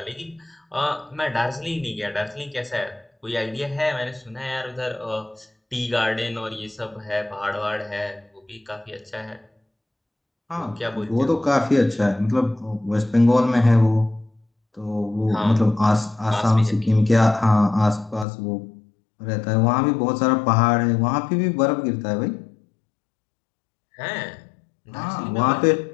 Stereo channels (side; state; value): right; drops out; at 18.2 s